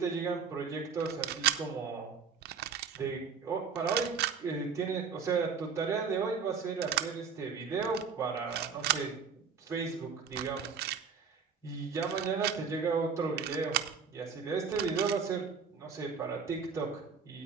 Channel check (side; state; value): left; quieter; 6.0 dB